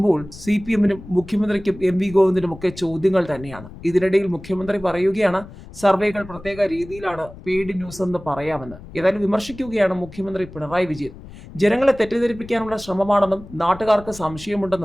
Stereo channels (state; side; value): noise; left; rumble, 17 dB below the sound